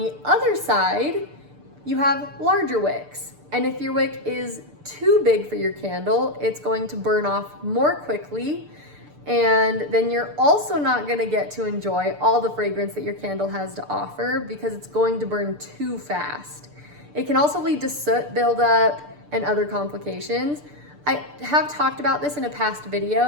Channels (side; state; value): left; late; 6.8 ms